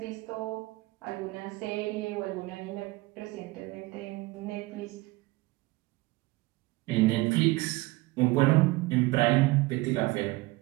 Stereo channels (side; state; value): left; quieter; 21.1 dB